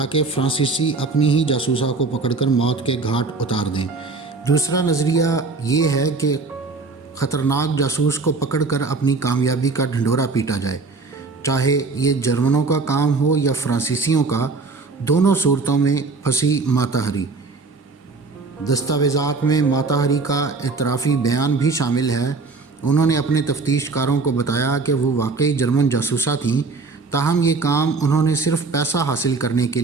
فرانسیسی اپنی ہی جاسوسا کو پکڑ کر موت کے گھاٹ اتار دیں۔ دوسرا نظریہ یہ ہے کہ خطرناک جاسوس کو پکڑ کر اپنی کامیابی کا ڈھنڈورا پیٹا جائے، چاہے یہ جرمنوں کا کام ہو یا فرانسیسیوں کا۔ دونوں صورتوں میں پھنسی ماتا ہری۔ دستاویزات میں ماتا ہری کا اعترافی بیان بھی شامل ہے۔ انہوں نے اپنے تفتیش کاروں کو بتایا کہ وہ واقعی جرمن جاسوسہ تھیں، تاہم یہ کام انہوں نے صرف پیسہ حاصل کرنے کے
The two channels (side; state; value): left; quieter; 4.0 dB